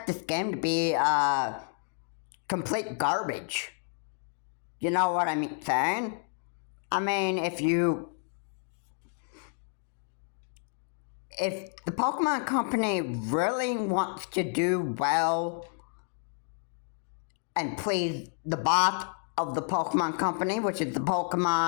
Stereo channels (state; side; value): silent; right; 58 dB below the other